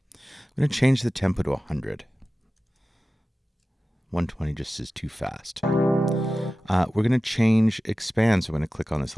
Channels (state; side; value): normal; both; correlation 0.95